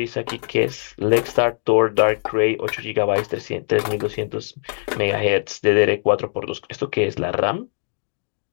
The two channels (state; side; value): silent; right; digital silence